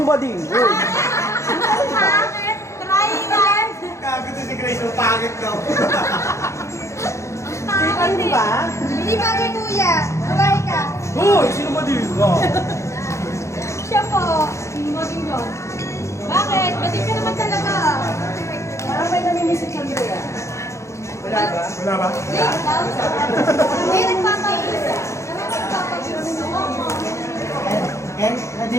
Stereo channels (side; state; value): right; late; 0.14 ms